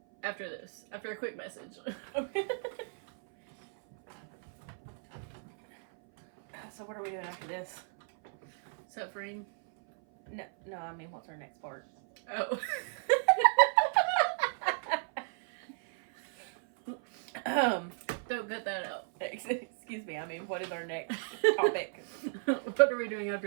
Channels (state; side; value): silent; left; 55 dB below the other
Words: after this. After a quick message. Okay. So what are we doing after this? Suffering. No, I mean, what's our next part? Oh. Don't cut that out. Excuse me. I mean, what is our next topic? What are we doing